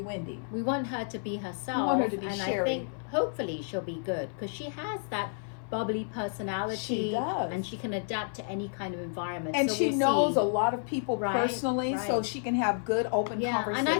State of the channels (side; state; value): right; silent; 55 dB below the other